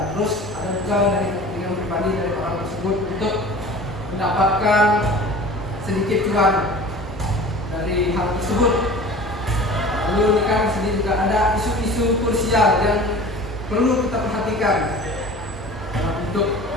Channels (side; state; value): both; normal; correlation 0.41